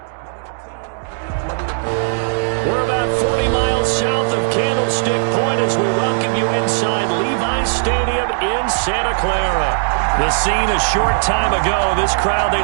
We're about 40 miles south of Candlestick Point as we welcome you inside Levi's Stadium in Santa Clara. The scene a short time ago, this crowd, they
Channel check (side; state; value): left; silent; digital silence